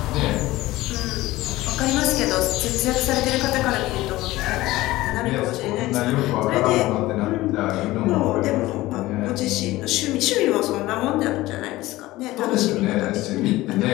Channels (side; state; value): right; quieter; 17.9 dB